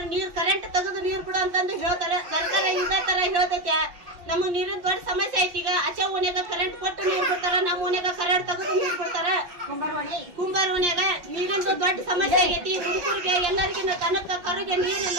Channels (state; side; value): late; left; 5.7 ms